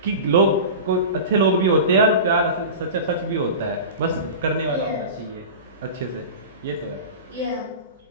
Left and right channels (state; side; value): inverted; both; correlation -0.30